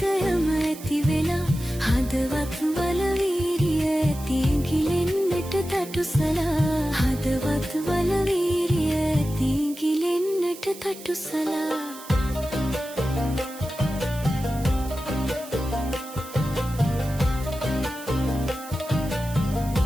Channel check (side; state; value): right; noise; hiss, 16 dB below the sound